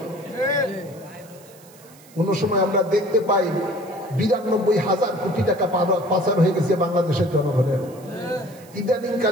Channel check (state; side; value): noise; right; hiss, 25 dB below the sound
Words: কোন সময় আমরা দেখতে পাই 92,000 কোটি টাকা পাচার হয়ে গেছে বাংলাদেশের জনগণের। ইদানিং